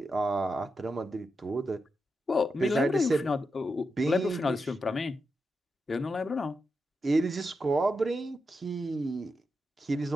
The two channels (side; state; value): both; normal; correlation 0.87